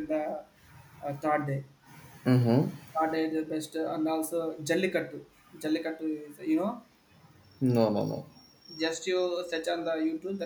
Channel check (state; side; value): identical; both; correlation 1.00